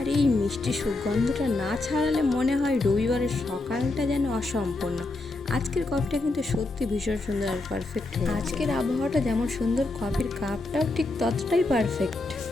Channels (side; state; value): right; quieter; 3.1 dB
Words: এই মিষ্টি সুগন্ধটা না ছাড়ালে মনে হয় রবিবারের সকালটা যেন অসম্পূর্ণ। আজকের কফিটা কিন্তু সত্যি ভীষণ সুন্দর আর পারফেক্ট। আজকের আবহাওয়াটা যেমন সুন্দর, কফির কাপটাও ঠিক ততটাই পারফেক্ট।